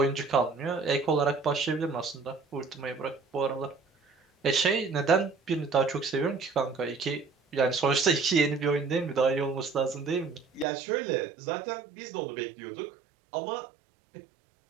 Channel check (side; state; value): left; drops out; at 10.7 s